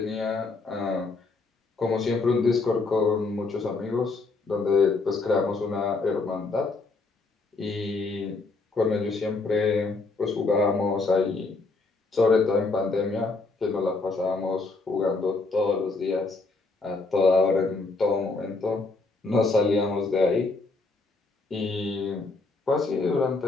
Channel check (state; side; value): quieter; right; 3.7 dB